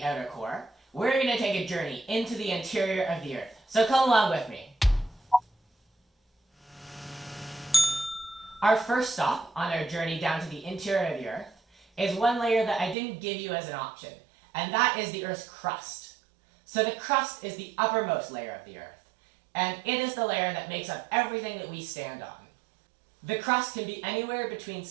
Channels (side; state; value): left; drops out; at 13.0 s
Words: outer core, we're going to take a journey into the interior of the Earth. So come along with me. Our first stop on our journey down to the interior of the Earth is one layer that I didn't give you as an option, and that is the Earth's crust. So the crust is the uppermost layer of the Earth, and it is the layer that makes up everything that we stand on. The crust can be anywhere between